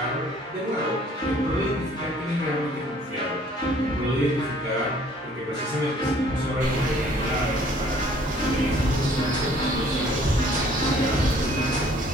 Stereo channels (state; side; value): normal; both; correlation 0.57